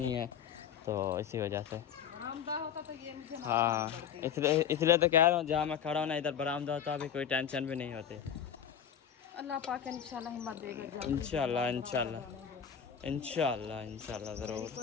है, तो इसी वजह से होता तो ये मुझे हाँ इसलिए तो कह रहा हूँ जहाँ मैं खड़ा हूँ ना इधर बरामदा होता अभी कोई टेंशन भी नहीं होती। अल्लाह पाक इंशाल्लाह हिम्मत देगा, इंशाल्लाह इंशाल्लाह ज़रूर।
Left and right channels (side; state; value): right; quieter; 8.5 dB